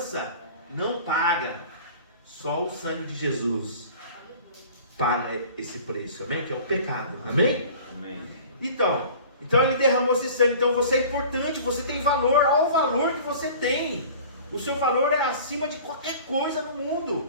não paga. Só o sangue de Jesus paga esse preço, amém? Que é o pecado, amém? Amém. Então ele derramou esse sangue. Então você é importante, você tem valor. Olha o valor que você tem. O seu valor é acima de qualquer coisa no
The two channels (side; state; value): both; inverted; correlation -0.43